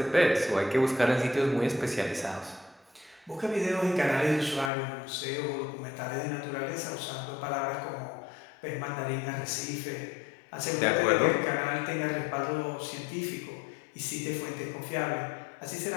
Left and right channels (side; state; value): right; drops out; at 4.7 s